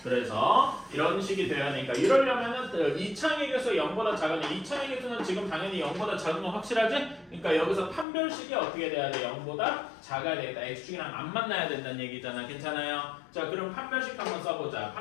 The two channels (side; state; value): right; drops out; at 8.1 s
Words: 그래서 이런 식이 되어야 되니까 이러려면은 이창의 개수 0보다 작으니 이창의 개수는 지금 당연히 0보다 작은 건 확실하지? 그러니까 여기서 판별식이 어떻게 돼야 돼? 0보다 작아야 되겠다. x축이랑 안 만나야 된다는 얘기잖아. 괜찮아요? 자, 그럼 판별식 한번 써보자.